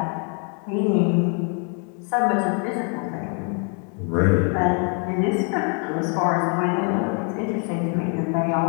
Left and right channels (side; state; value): right; quieter; 39.7 dB